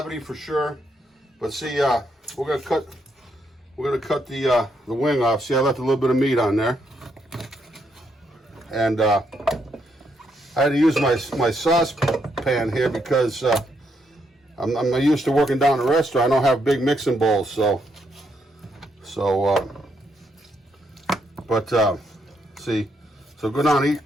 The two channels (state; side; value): normal; both; correlation 0.77